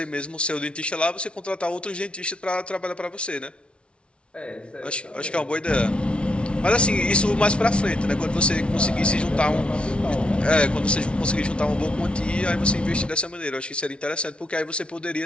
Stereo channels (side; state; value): right; late; 0.059 ms